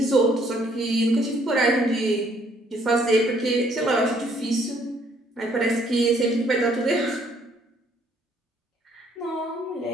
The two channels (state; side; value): normal; both; correlation 0.65